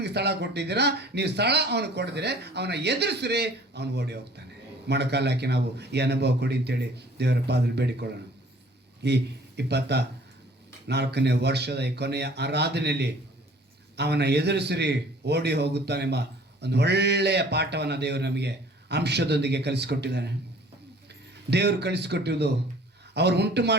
ಸ್ಥಳ ಕೊಟ್ಟಿದ್ದೀರಾ, ನೀವು ಸ್ಥಳ ಅವನು ಕೊಡಿದ್ರೆ ಅವನ ಎದುರಿಸ್ರಿ, ಅವನು ಓಡಿ ಹೋಗ್ತಾನೆ. ಮೊಣಕಾಲು ಹಾಕಿ ನಾವು ಈ ಅನುಭವ ಕೊಡಿ ಅಂತೇಳಿ ದೇವರ ಪಾದದಲ್ಲಿ ಬೇಡಿಕೊಳ್ಳೋಣ. ಈ 24ನೇ ವರ್ಷದ ಈ ಕೊನೆಯ ಆರಾಧನೆಯಲ್ಲಿ ಅವನ ಎದುರಿಸಿರಿ ಓಡಿ ಹೋಗುತ್ತಾನೆಂಬ ಒಂದು ಒಳ್ಳೆಯ ಪಾಠವನ್ನು ದೇವರು ನಮಗೆ ಅಂಶದೊಂದಿಗೆ ಕಲಿಸಿಕೊಟ್ಟಿದ್ದಾನೆ. ದೇವರು ಕಲಿಸಿಕೊಟ್ಟಿರುವುದು ಅವರು ಉಂಟು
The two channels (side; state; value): both; normal; correlation 0.52